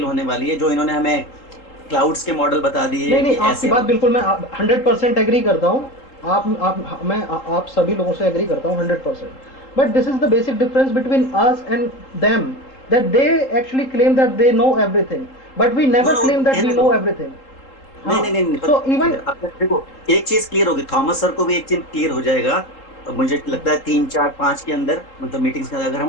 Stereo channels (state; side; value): late; right; 3.8 ms